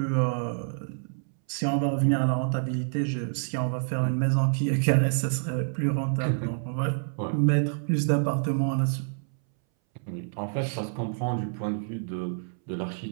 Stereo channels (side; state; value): left; silent; 60 dB below the other